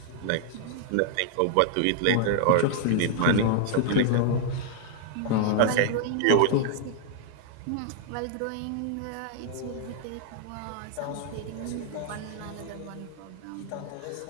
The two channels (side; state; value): both; different; correlation 0.00